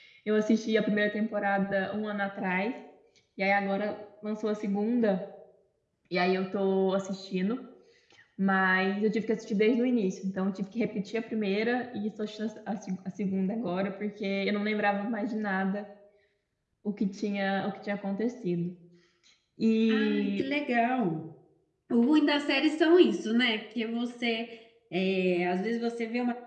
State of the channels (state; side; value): identical; both; correlation 1.00